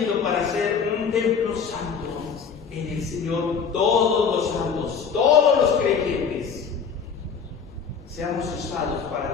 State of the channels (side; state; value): right; quieter; 6.2 dB